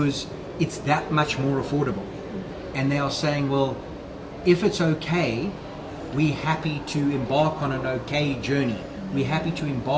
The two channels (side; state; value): both; identical; correlation 1.00